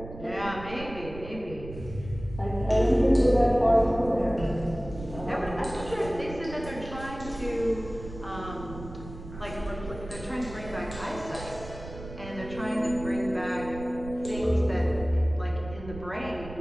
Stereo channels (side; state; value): right; noise; rumble, 13 dB below the sound